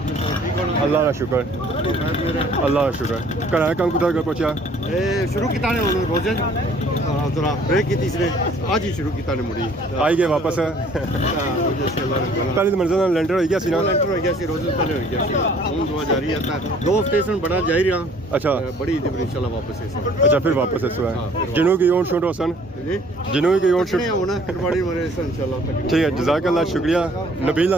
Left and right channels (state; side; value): normal; both; correlation 0.56